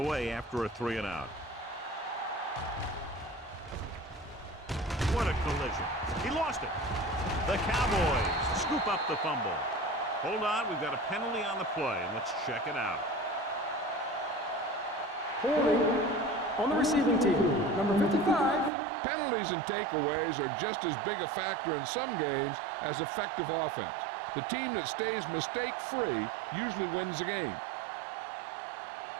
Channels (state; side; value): drops out; left; at 18.7 s